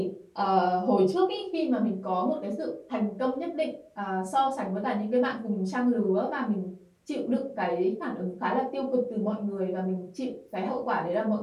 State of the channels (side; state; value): both; identical; correlation 1.00